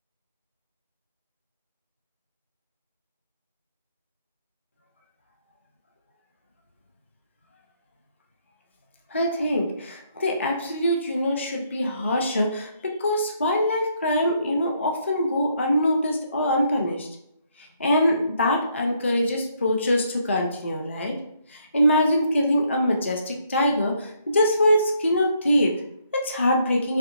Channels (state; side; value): inverted; both; correlation -0.72